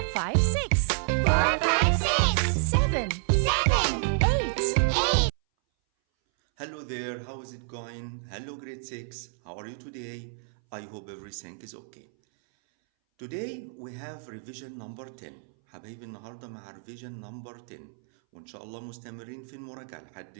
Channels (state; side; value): silent; left; 58 dB below the other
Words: 5, 6. 4, 5, 6. 7. 7. 8. 8. Hello there, how is it going? Hello grade 6, how are you today? I hope everything is okay. Today we have revision number 10. حبايبي النهارده مع revision number 10 وإن شاء الله مستمرين في المراجعة لحد